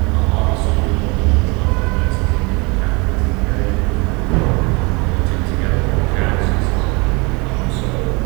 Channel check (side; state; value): left; quieter; 28.3 dB